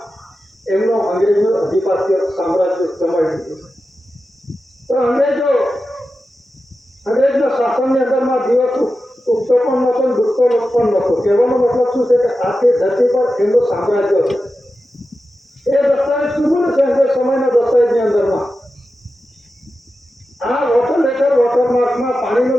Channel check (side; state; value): both; normal; correlation 0.92